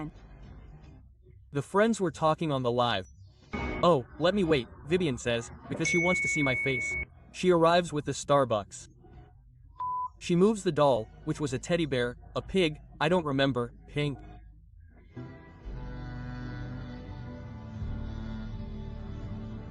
The friends were talking on the live. Oh, let me wait, Vivian says, because she wants to see my face. She arrives with the Starbucks. She moves the doll, which was a teddy bear, a pig, I don't remember, pink.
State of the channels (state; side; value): identical; both; correlation 1.00